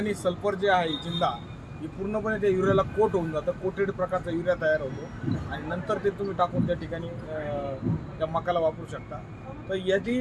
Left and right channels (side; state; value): both; identical; correlation 1.00